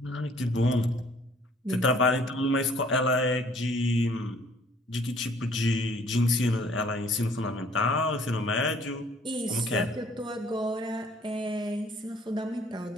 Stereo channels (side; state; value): both; normal; correlation 0.59